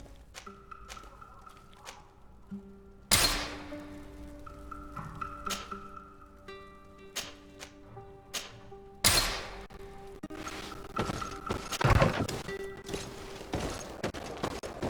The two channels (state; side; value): identical; both; correlation 1.00